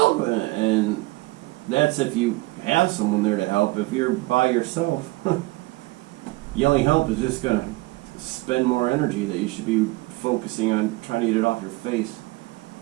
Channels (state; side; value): quieter; left; 22.0 dB